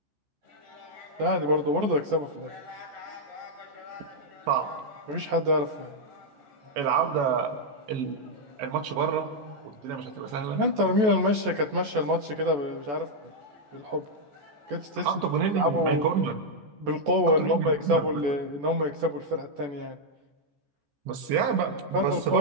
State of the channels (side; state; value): left; late; 14 ms